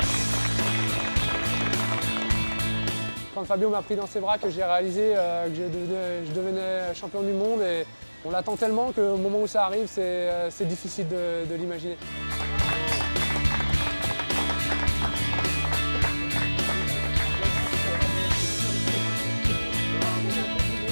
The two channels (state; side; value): inverted; both; correlation -1.00